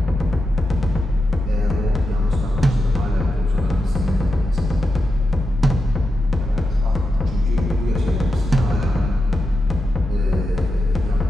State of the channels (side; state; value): both; normal; correlation 0.88